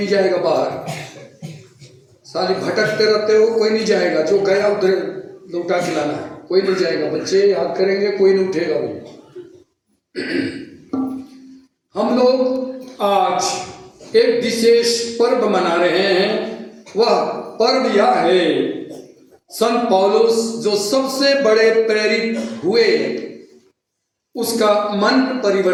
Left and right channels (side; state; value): both; identical; correlation 1.00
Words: जाएगा बाहर, साली भटकते रहते हो, कोई नहीं जाएगा, जो गया उधर लौटा के लाना है, कोई नहीं जाएगा। बच्चे याद करेंगे, कोई नहीं उठेगा भाई। हम लोग आज एक विशेष पर्व मना रहे हैं। वह पर्व यह है, संत पौलुस जो सबसे बड़े प्रेरित हुए उसका मन